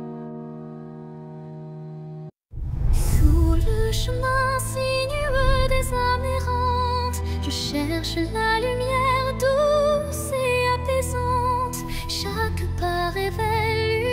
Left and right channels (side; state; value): both; identical; correlation 1.00